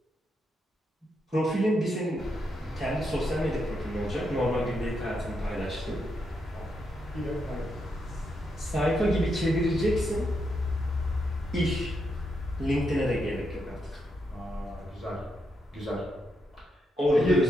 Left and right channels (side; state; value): both; normal; correlation 0.82